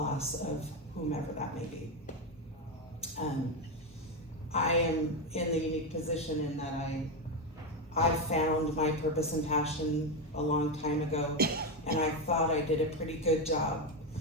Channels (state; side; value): normal; both; correlation 0.11